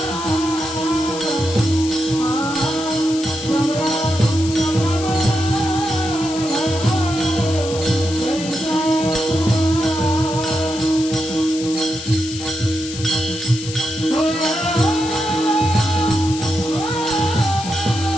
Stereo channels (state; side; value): noise; left; hiss, 10 dB below the sound